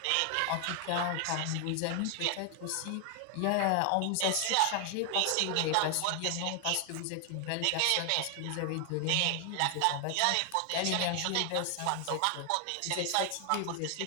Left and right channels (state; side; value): different; both; correlation 0.00